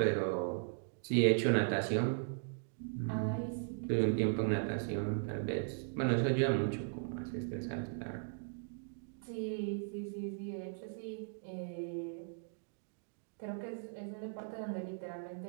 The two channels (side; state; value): left; silent; digital silence